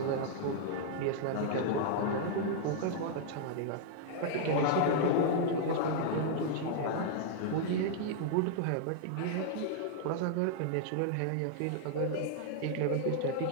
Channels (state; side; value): different; both; correlation -0.01